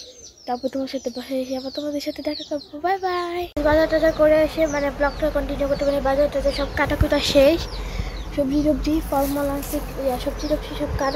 তারপর তোমার সাথে বাসায় এসে আবার তোমাদের সাথে দেখা করবো। Bye bye. বাজার টাজার করে এসে মানে ব্লগটা কন্টিনিউ করতে পারি। বাজার টাজার সব কাটাকুটা শেষ, সবজি ফলমূল আছে, সবজি সব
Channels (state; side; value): identical; both; correlation 1.00